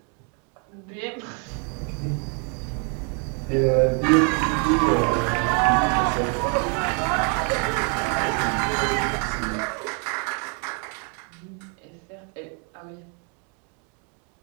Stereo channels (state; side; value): quieter; left; 38.2 dB